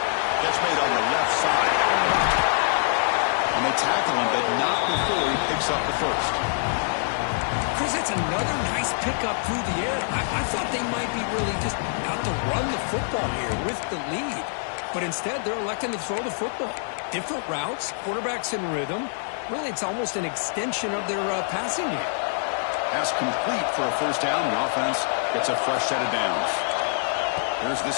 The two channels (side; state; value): right; silent; digital silence